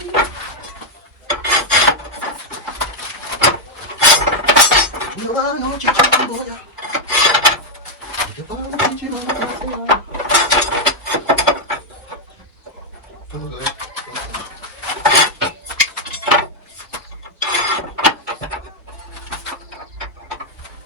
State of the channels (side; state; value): both; normal; correlation 0.00